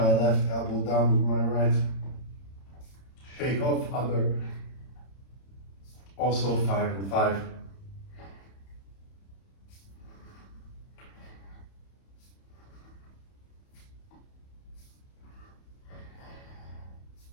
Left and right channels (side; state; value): right; late; 31 ms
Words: left elbow down with my right. Shake off, other, also 5 and 5.